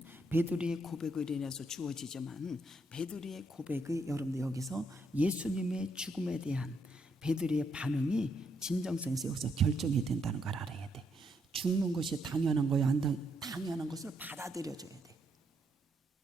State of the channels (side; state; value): both; normal; correlation 0.76